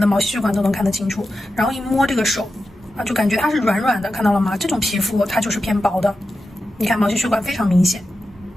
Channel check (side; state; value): both; normal; correlation 0.91